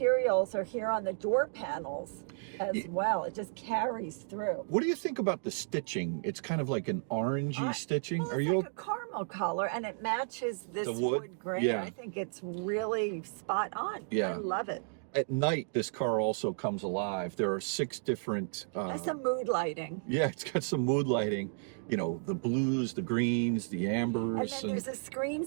are here on the door panels as well. It just carries through. What do you think about the stitching? It's kind of like an orangey stitching. Well, Are it's you like a caramel color, and it matches this the wood grain. Yeah. I think it's really spot on. Yeah. I love it. At night, this car also comes alive. There are 6 different... There's some mood lighting. Yeah, it's got some mood lighting. You know, the blues, the greens, the ambers. And then there's a screen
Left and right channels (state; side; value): silent; left; digital silence